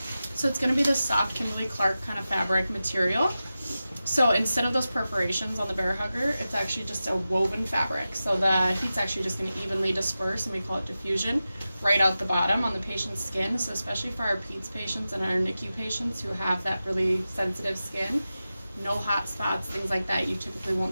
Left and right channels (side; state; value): both; inverted; correlation -0.94